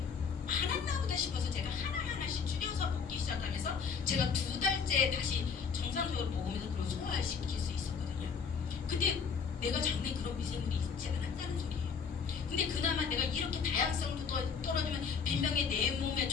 많았나 보다 싶어서 제가 하나하나씩 줄여서 먹기 시작하면서 제가 2달째 다시 정상적으로 먹으면서 그걸 소화시킬 수 있었거든요. 근데 내가 장내에 그런 미생물이 있지 않았다는 소리예요. 근데 그나마 내가 이렇게 다양성도 떨어지면 빈병에 내 몸에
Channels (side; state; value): right; quieter; 6.0 dB